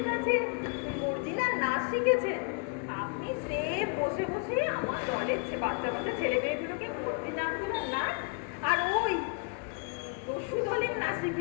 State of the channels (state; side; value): quieter; right; 35.2 dB